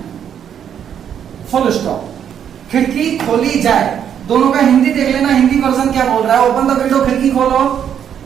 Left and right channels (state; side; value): quieter; left; 8.8 dB